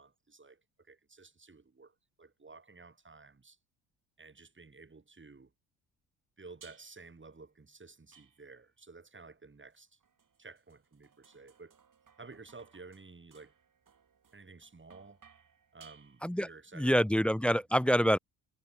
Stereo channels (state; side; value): normal; both; correlation 0.93